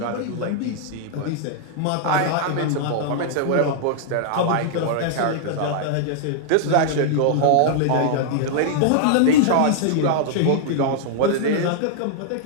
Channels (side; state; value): both; different; correlation -0.01